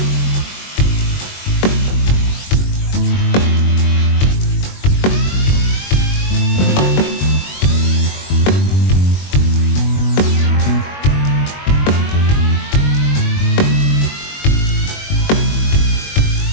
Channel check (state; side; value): late; right; 21 ms